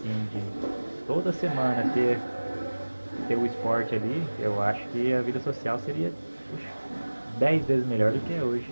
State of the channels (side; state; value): both; inverted; correlation -1.00